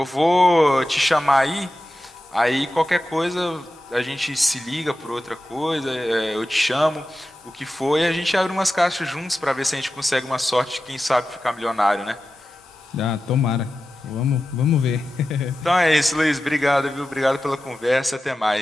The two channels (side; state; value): both; normal; correlation 0.93